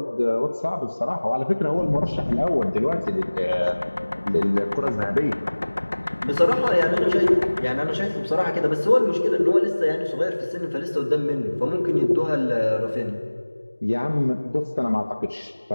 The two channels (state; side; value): inverted; both; correlation -1.00